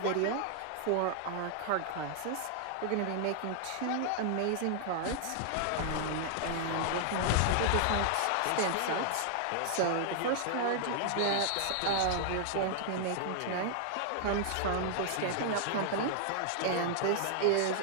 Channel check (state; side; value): different; both; correlation -0.01